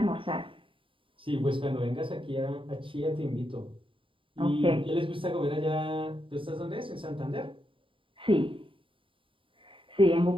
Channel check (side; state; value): left; late; 0.25 ms